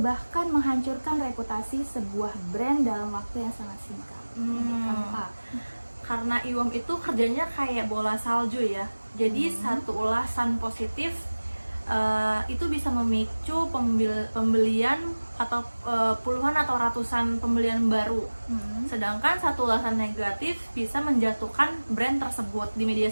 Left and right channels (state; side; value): inverted; both; correlation -1.00